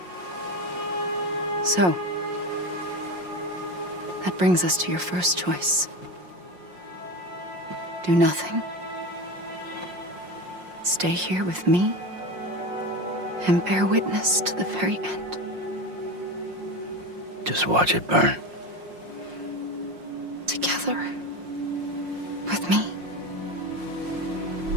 So, that brings us to your first choice. Do nothing. Stay here with me and bear witness to the very end. Just watch it burn. Together. With me.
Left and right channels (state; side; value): late; left; 5.6 ms